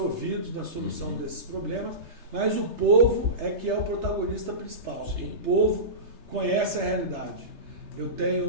na solução desses problemas, mas o povo é que é o protagonista principal. Sim. O povo conhece a realidade. Eu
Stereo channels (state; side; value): late; left; 3.3 ms